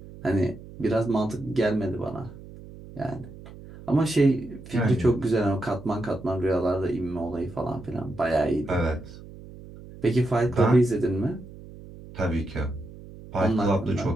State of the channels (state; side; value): noise; right; hum, 17 dB below the sound